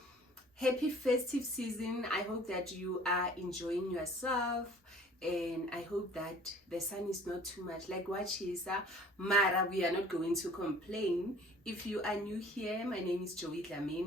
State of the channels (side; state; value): both; normal; correlation 0.50